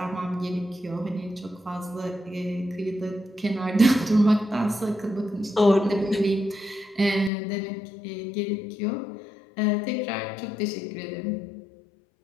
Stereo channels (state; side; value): drops out; right; at 7.3 s